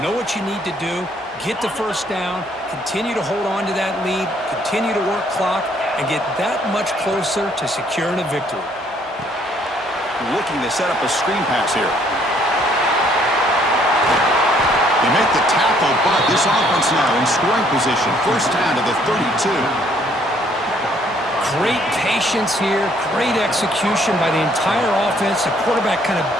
know what you need to do, get the 1st down, continue to hold on to that lead, continue to work clock, and get that much closer to securing a victory. Looking to set up a screen pass here. They make the tackle, but this offense now in scoring position. 1st down to the 32. Great patience here, great execution by the entire offense. The quarterback kind of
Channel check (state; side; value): normal; both; correlation 0.64